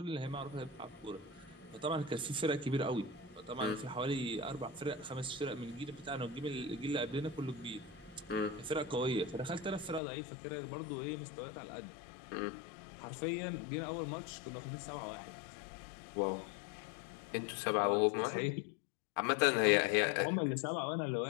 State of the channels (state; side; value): drops out; right; at 10.0 s